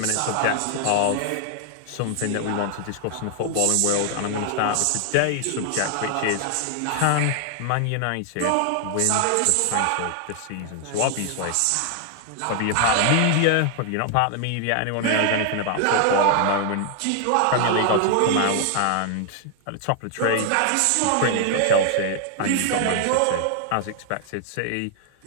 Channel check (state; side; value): different; both; correlation 0.00